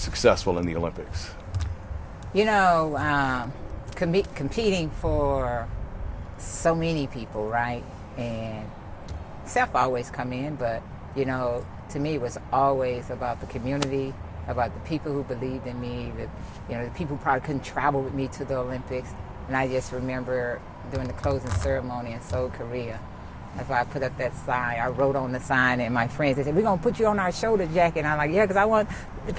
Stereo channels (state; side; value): identical; both; correlation 1.00